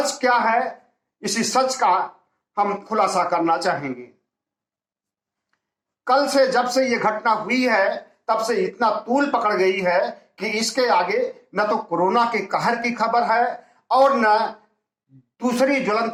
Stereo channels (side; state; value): both; identical; correlation 1.00